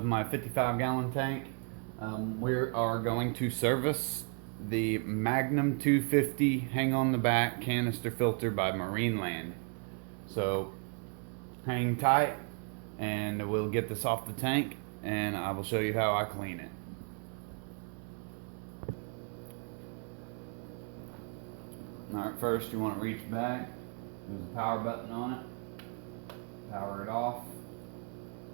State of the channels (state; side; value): quieter; left; 39.0 dB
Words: my 55-gallon tank. We are going to service the Magnum 250 hang on the back canister filter by Marineland. So hang tight and we'll get this off the tank and I will show you how I clean it. Alright, first you want to reach back, there's a power button on it, power it off,